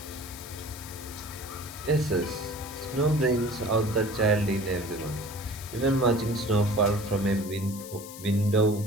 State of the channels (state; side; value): noise; left; hiss, 14 dB below the sound